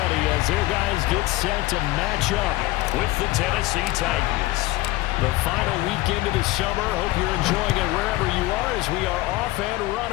as their guys get set to match up with the Tennessee Titans. The final weekend of the summer. Hope you're enjoying it wherever you are as we are off and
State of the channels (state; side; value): quieter; right; 18.5 dB